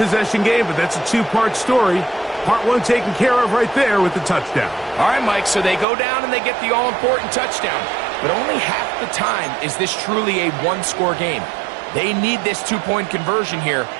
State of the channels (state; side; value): drops out; left; at 5.9 s